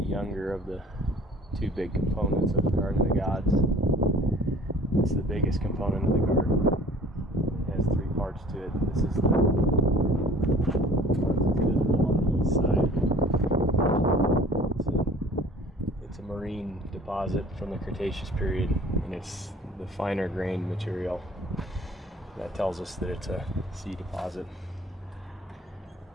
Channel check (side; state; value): both; normal; correlation 0.49